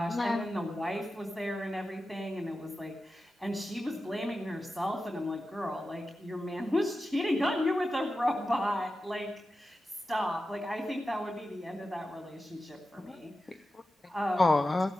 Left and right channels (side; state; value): both; normal; correlation 0.92